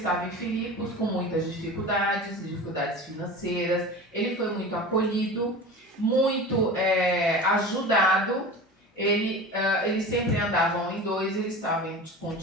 em Filipos com muitas dificuldades financeiras. Ele foi muito acolhido, muito ajudado, eles sempre andavam em dois, ele estava com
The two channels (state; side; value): normal; both; correlation 0.34